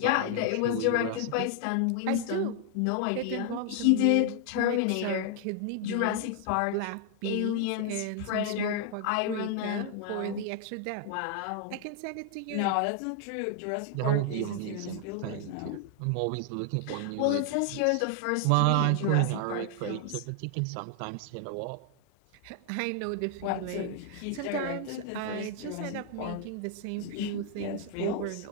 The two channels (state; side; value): different; both; correlation 0.00